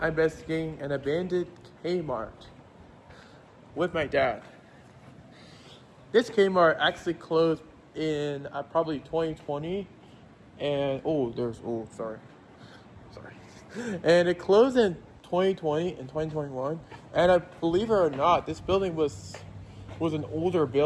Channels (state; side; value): identical; both; correlation 1.00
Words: investigating an abandoned Kmart with my dad. This Kmart actually closed in probably 2020 and sorry. And it closed in 2020 and 2021, and I believe it or not, this building was an older